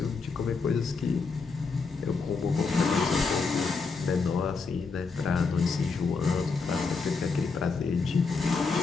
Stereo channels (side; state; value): right; quieter; 4.6 dB